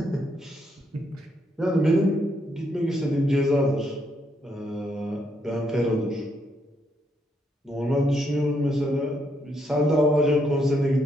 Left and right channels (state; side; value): normal; both; correlation 0.76